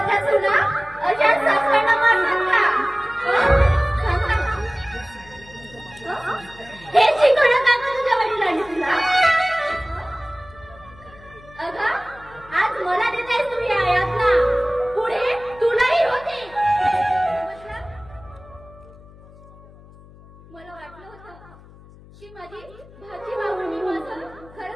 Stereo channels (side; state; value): left; noise; hum, 22 dB below the sound